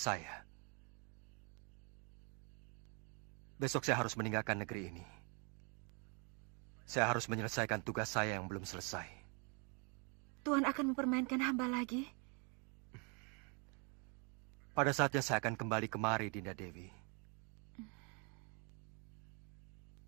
Besok saya harus meninggalkan negeri ini. Saya harus menyelesaikan tugas saya yang belum selesai. Tuhan akan mempermainkan hamba lagi? Pada saatnya saya akan kembali kemari, Dinda Dewi.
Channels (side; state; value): left; quieter; 34.8 dB